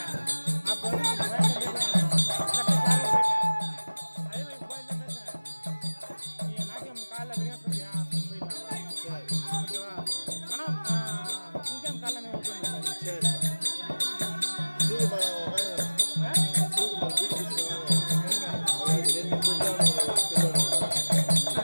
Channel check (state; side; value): inverted; both; correlation -1.00